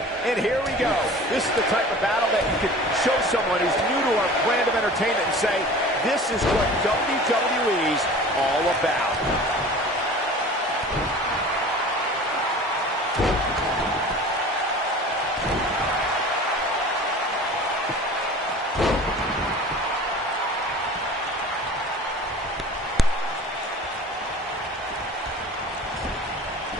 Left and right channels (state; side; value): normal; both; correlation 0.41